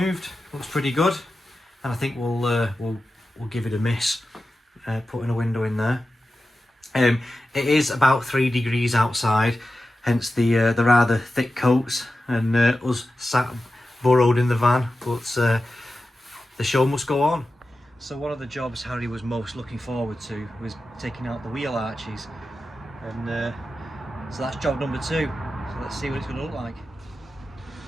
Looks pretty good, and I think we'll give it a miss, putting a window in there. It is about 3 degrees outside, hence the rather thick coats, and us sat burrowed in the van, but the show must go on. So one of the jobs Harry was most looking forward to was taking out the wheel arches, and so that's job number 2. So let's see what it's going to look like.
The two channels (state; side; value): normal; both; correlation 0.93